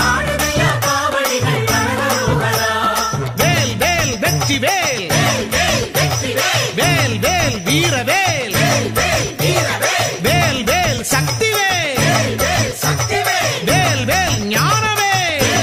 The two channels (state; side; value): identical; both; correlation 1.00